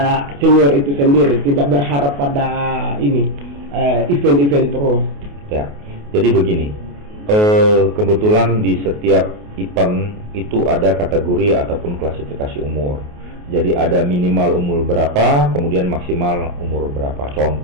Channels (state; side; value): late; left; 28 ms